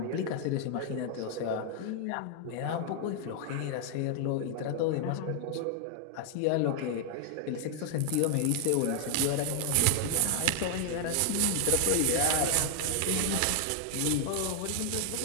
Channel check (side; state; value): both; different; correlation 0.00